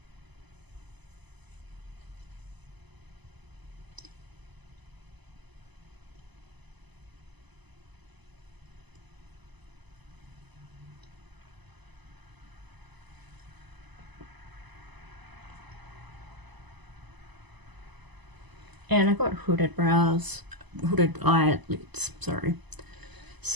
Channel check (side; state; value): left; late; 1.0 ms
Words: And I've got hooded brows, hooded eyelids, sorry.